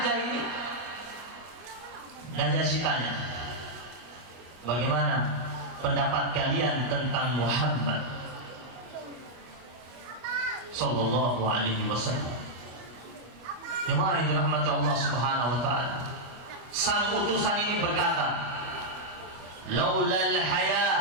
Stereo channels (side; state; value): left; late; 25 ms